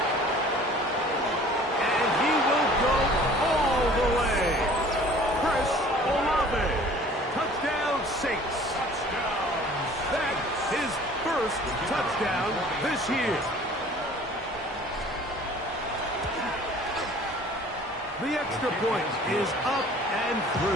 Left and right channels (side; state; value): both; normal; correlation 0.49